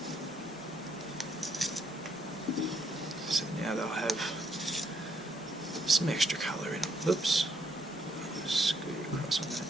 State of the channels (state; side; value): normal; both; correlation 0.73